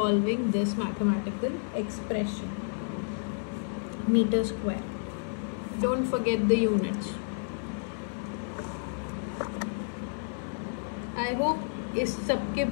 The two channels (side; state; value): right; silent; 57 dB below the other